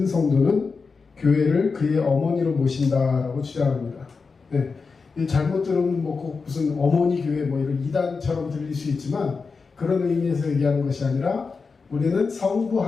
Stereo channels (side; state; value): right; quieter; 4.7 dB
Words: 성도는 교회를 그의 어머니로 모신다라고 주장합니다. 네. 잘못 들으면 꼭 무슨 어머니 교회 이런 이단처럼 들릴 수 있지만 그런 의미에서 얘기하는 것이 아니라 우리는 성부